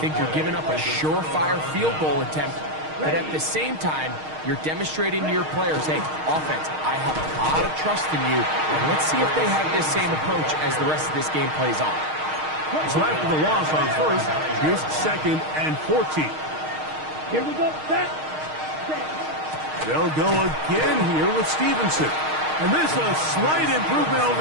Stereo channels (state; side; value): late; left; 6.4 ms